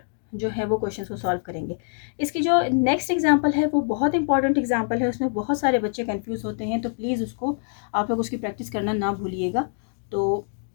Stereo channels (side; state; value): right; silent; 62 dB below the other